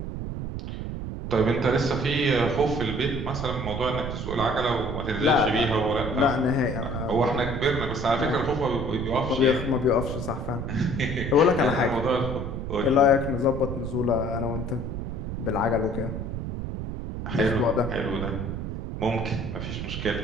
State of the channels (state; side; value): noise; right; rumble, 5 dB below the sound